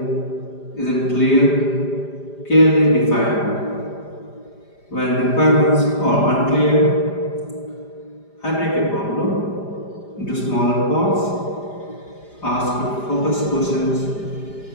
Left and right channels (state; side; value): late; right; 5.0 ms